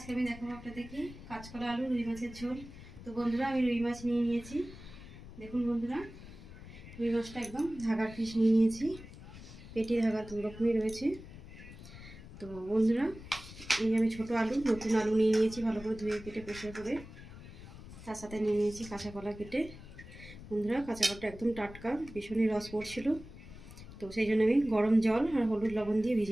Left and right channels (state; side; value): noise; left; rumble, 15 dB below the sound